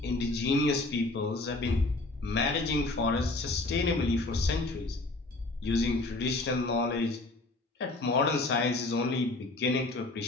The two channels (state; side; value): quieter; right; 3.0 dB